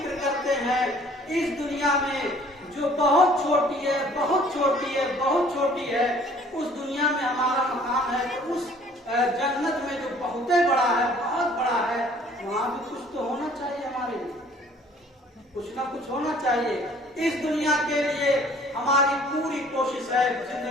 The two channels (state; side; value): normal; both; correlation 0.55